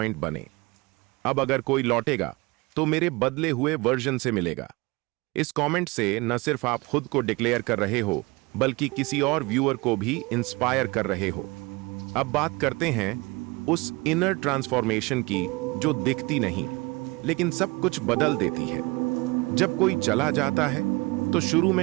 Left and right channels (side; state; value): left; quieter; 24.4 dB